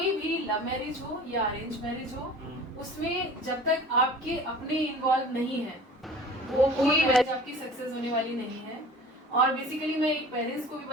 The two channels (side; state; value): both; normal; correlation 0.42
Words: भी लव मैरिज हो या अरेंज मैरिज हो, उसमें जब तक आपके अपने इन्वॉल्व नहीं है वो कोई मैरिज आपकी सक्सेस होने वाली नहीं है। और बेसिकली मैं एक पेरेंट्स को भी